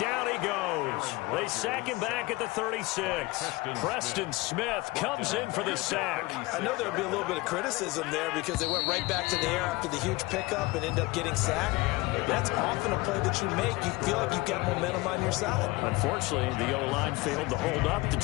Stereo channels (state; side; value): quieter; right; 22.0 dB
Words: he goes. They sack him back at the 36. Preston Smith comes in for the sack. I know there would be a little bit of criticism there because they went right back to the air after the huge pickup and end up getting sacked. That's often a play that you make. You feel like you've got momentum on your side. Unfortunately, the O-line failed to hold up to